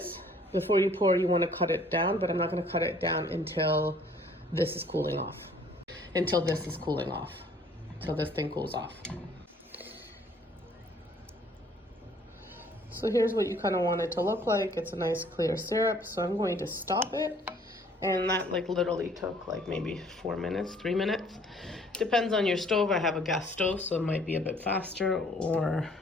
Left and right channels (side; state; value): both; normal; correlation 0.58